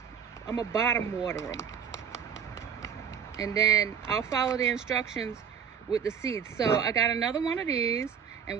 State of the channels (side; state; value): left; quieter; 7.5 dB